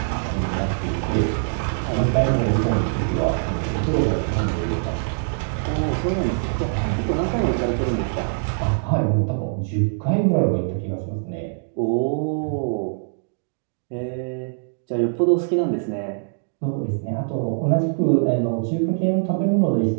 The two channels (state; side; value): silent; left; digital silence